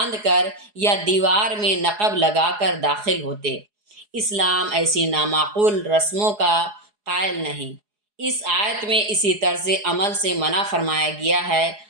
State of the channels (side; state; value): left; late; 4.8 ms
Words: کر یا دیوار میں نقب لگا کر داخل ہوتے۔ اسلام ایسی نامعقول رسموں کا قائل نہیں۔ اس آیت میں اسی طرز عمل سے منع فرمایا گیا ہے